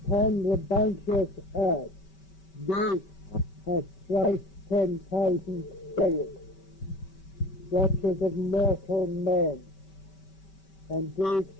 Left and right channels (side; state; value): right; late; 5.2 ms